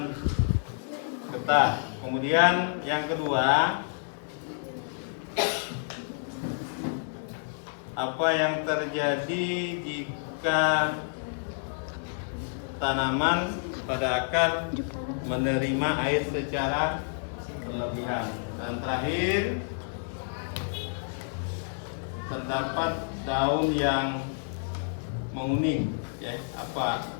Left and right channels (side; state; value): right; silent; 58 dB below the other